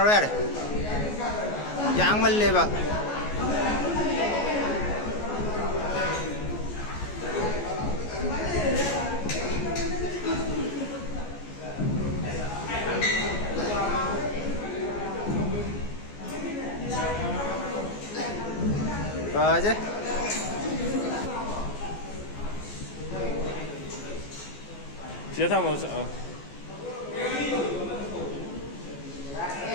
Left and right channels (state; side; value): late; right; 14 ms